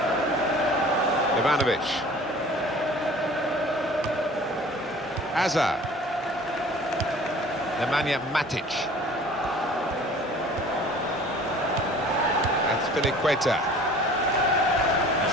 Ivanovic. Hazard. Nemanja Matic. That's Filiqueta.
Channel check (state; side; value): normal; both; correlation 0.47